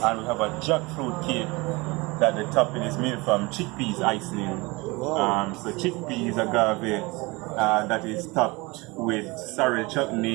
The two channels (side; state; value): left; quieter; 24.6 dB